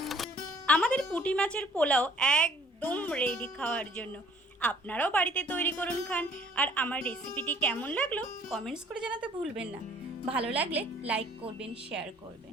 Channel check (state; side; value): normal; both; correlation 0.56